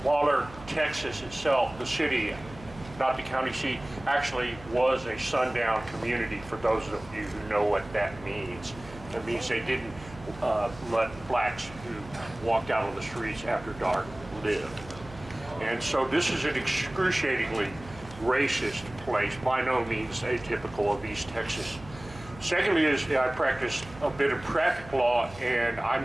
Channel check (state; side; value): noise; right; hum, 17 dB below the sound